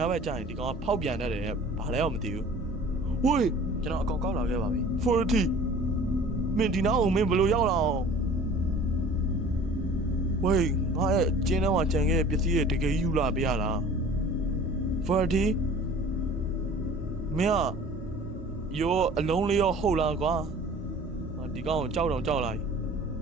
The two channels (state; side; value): normal; both; correlation 0.46